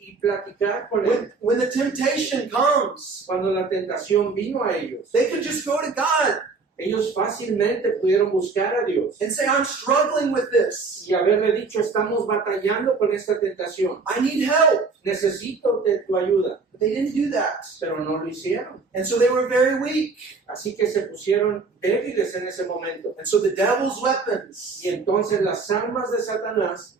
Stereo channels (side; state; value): left; quieter; 4.3 dB